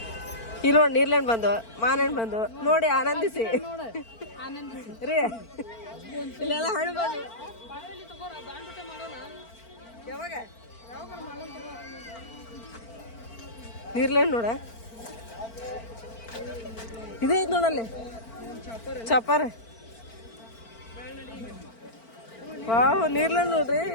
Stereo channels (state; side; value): late; right; 4.4 ms